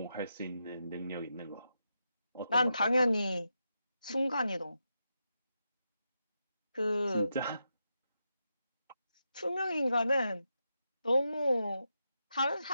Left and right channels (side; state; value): both; inverted; correlation -0.86